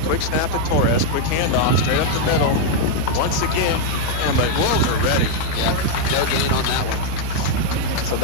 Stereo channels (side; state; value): both; different; correlation 0.00